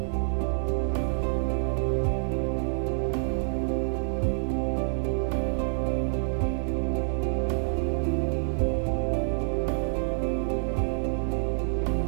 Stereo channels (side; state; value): left; silent; 60 dB below the other